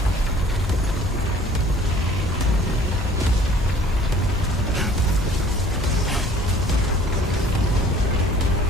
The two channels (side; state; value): both; normal; correlation 0.53